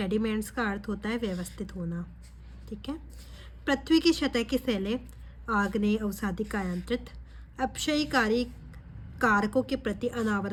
का अर्थ होता है व्यवस्थित होना, ठीक है। पृथ्वी की सतह की शैलें आग्नेय, अवसादी, कायांतरित, अपक्षयकारी कारकों के प्रति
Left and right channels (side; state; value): both; identical; correlation 1.00